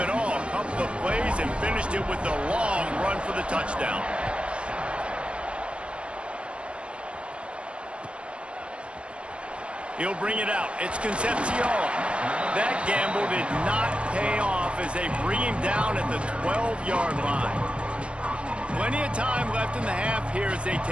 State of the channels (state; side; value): late; left; 0.059 ms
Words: all. A couple of plays and finished it with a long run for the touchdown. He'll bring it out. It's Concepcion. That gamble did not pay off as they bring him down at the 12-yard line. Plenty of time left in the half here as they